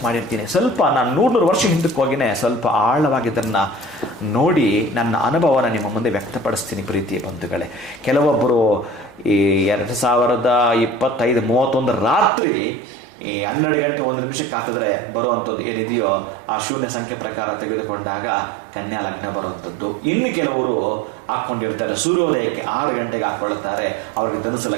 ಮಾಡಿರ್ತೀನಿ. ಸ್ವಲ್ಪ ನಾನು 100 ವರ್ಷ ಹಿಂದಕ್ಕೆ ಹೋಗಿನೇ ಸ್ವಲ್ಪ ಆಳವಾಗಿ ಇದನ್ನು ನೋಡಿ ನನ್ನ ಅನುಭವನ ನಿಮ್ಮ ಮುಂದೆ ವ್ಯಕ್ತಪಡಿಸ್ತೀನಿ ಪ್ರೀತಿಯ ಬಂಧುಗಳೇ. ಕೆಲವೊಬ್ಬರು ಈ 2025-31 ರಾತ್ರಿ ಈ 12 ಗಂಟೆ 1 ನಿಮಿಷಕ್ಕೆ ಹಾಕಿದ್ರೆ ಬರುವಂಥದ್ದು ಏನಿದೆಯೋ ಆ ಶೂನ್ಯ ಸಂಖ್ಯೆ ಪ್ರಕಾರ ತೆಗೆದುಕೊಂಡಾಗ ಕನ್ಯಾ ಲಗ್ನ ಬರುವಂಥದ್ದು. ಇನ್ನು ಕೆಲವರು ಹಾಕ್ಕೊಂಡಿರ್ತಾರೆ ಸೂರ್ಯೋದಯಕ್ಕೆ 6 ಗಂಟೆಗೆ ಹಾಕ್ಕೊಳ್ತಾರೆ, ಅವ್ರಿಗೆ ಧನುಸು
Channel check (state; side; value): drops out; left; at 12.3 s